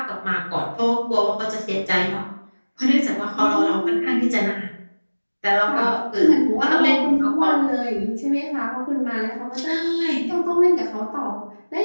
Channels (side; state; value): both; inverted; correlation -1.00